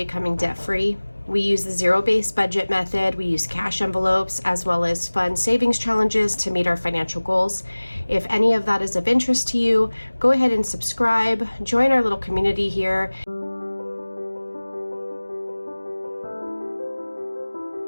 debt-free. We use the zero-based budget method. We use cash envelopes as well as fun savings challenges to meet our financial goals. If any of that is of interest to you, go ahead and subscribe. Join our little community here.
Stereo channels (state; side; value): inverted; both; correlation -1.00